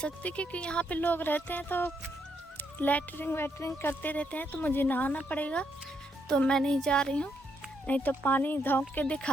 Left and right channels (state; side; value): normal; both; correlation 0.76